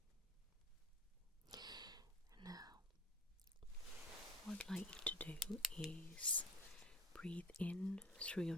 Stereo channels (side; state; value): both; normal; correlation 0.40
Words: Now, what I'd like you to do is breathe in through your